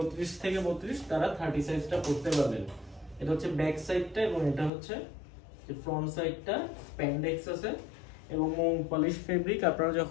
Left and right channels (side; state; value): right; drops out; at 4.7 s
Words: থেকে 32 তারা 30 সাইজটা পরতে পারবেন। এটা হচ্ছে ব্যাক সাইডটা এবং এটা হচ্ছে ফ্রন্ট সাইডটা। স্প্যান্ডেক্স আছে এবং মোম পলিশ ফেব্রিক। আপনারা